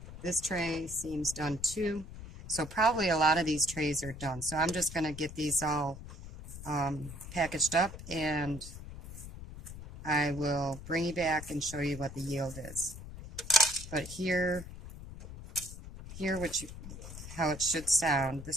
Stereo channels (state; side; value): noise; left; rumble, 12 dB below the sound